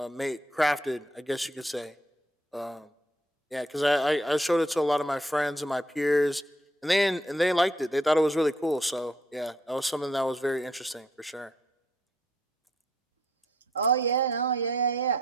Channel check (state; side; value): normal; both; correlation 0.70